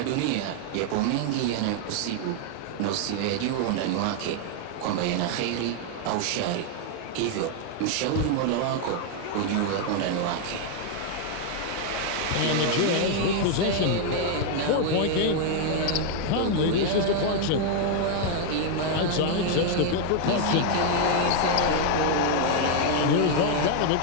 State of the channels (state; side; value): different; both; correlation 0.00